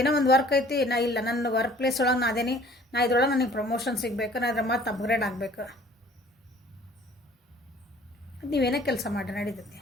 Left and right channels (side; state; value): both; normal; correlation 0.53